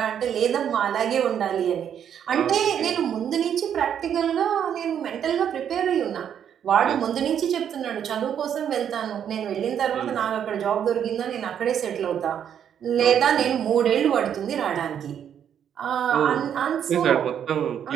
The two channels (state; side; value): quieter; left; 8.9 dB